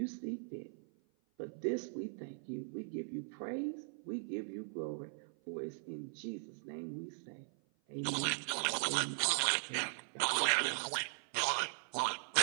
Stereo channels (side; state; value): left; silent; 51 dB below the other